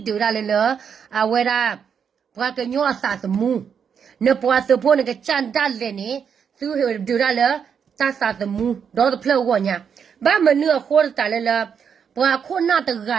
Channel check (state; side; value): quieter; left; 7.2 dB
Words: ဒရလည်းအဝရပွားကညောအစာသမူနပွားစဖို့နကချန်တလည်းနေသုဒရလည်းta sa the mu do the flow wo nya ba ma nu kho ta le la bwa kho na ta ga